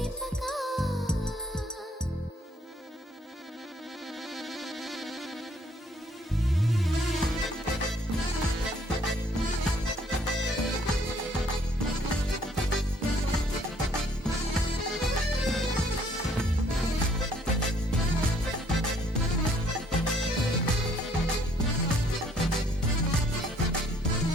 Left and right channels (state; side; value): normal; both; correlation 0.63